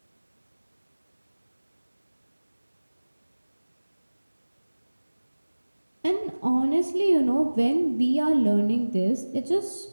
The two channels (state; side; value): inverted; both; correlation -1.00